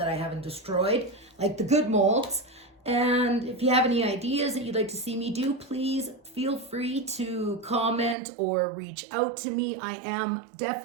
destroyed, like the good molds. And if you have any ideas that you'd like to see me do, please feel free to comment or reach out to me. I am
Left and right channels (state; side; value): drops out; left; at 8.2 s